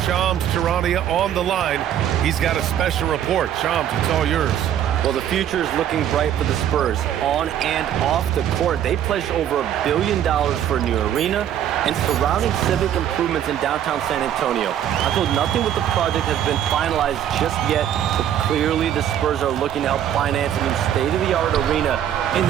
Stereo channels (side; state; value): left; quieter; 10.3 dB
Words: Shams Charania, on the line. He's got a special report. Shams, it's all yours. Well, the future is looking bright for the Spurs. On and off the court, they pledged over $1 billion for a new arena and surrounding civic improvements in downtown San Antonio. Although nothing with the project has been finalized just yet, but clearly the Spurs are looking to help finance a new state-of-the-art arena in